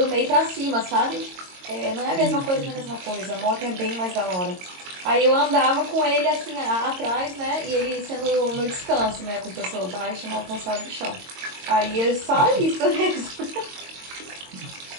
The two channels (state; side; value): late; left; 22 ms